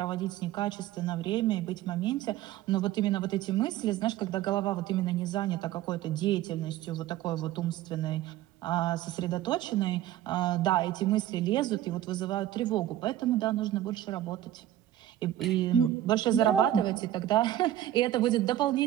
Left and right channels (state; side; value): quieter; left; 13.0 dB